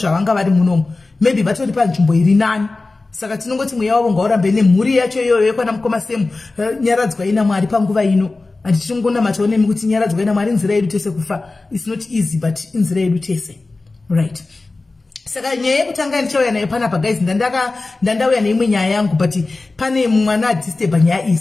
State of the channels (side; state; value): right; quieter; 3.4 dB